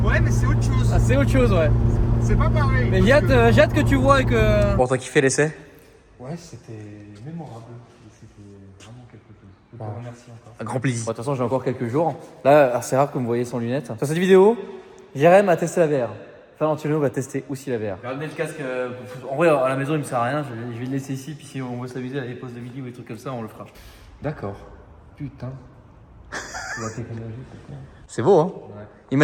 Ouais, mais c'est autre chose. Ah, c'est autre chose, ouais. C'est pas pareil. Mais j'ai hâte que tu vois et que. Bon, t'as kiffé l'essai? Ouais, c'était mémorable. C'était vraiment quelque chose. Je te remercie encore. Un grand plaisir. Bon, de toute façon, j'ai encore quelques jours. Là, c'est rare que vous me voyez sans lunettes. Sur cette vidéo, Jérém a testé la VR. Valentino va tester aussi la VR. J'ai ramené le casque. En vrai, à la maison, il me sert à rien. Je vais le laisser ici. Puis si on veut s'amuser à des pauses de midi ou des trucs comme ça, on le fera. D'accord. Putain. La technologie, c'est quoi? C'est beau, hein? Ouais.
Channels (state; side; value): identical; both; correlation 1.00